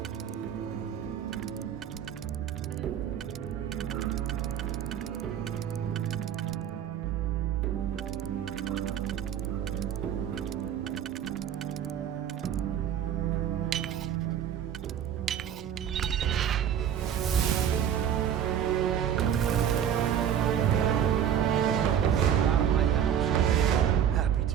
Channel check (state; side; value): quieter; left; 9.3 dB